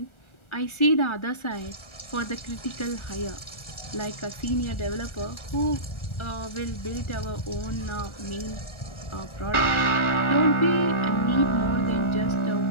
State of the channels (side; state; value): right; late; 1.4 ms